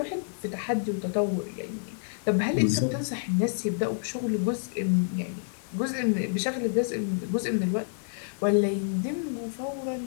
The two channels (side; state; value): right; silent; digital silence